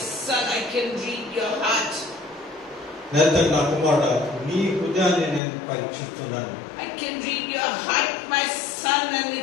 I can read your heart. Nathan, నా కుమారుడా, నీ హృదయాన్ని నేను పరీక్షిస్తున్నాను. I can read your heart, my son, and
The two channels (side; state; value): right; drops out; at 5.4 s